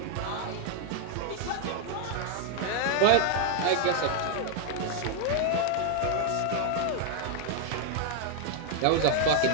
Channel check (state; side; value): different; both; correlation 0.00